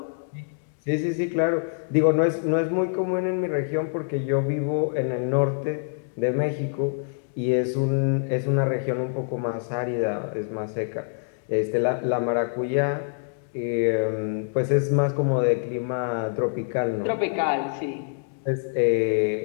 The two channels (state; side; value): silent; right; digital silence